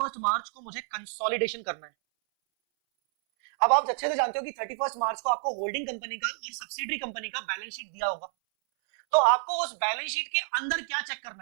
मार्च को मुझे कंसोलिडेशन करना है। अब आप अच्छे से जानते हो कि 31 मार्च को आपको होल्डिंग कंपनी का और सब्सिडरी कंपनी का बैलेंस शीट दिया होगा, तो आपको उस बैलेंस शीट के अंदर क्या चेक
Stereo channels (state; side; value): silent; left; 58 dB below the other